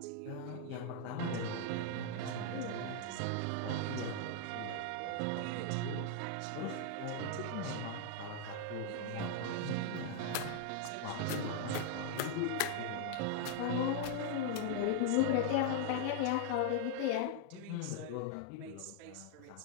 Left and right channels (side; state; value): both; different; correlation 0.00